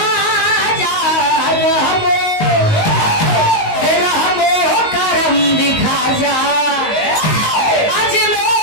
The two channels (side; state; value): right; late; 19 ms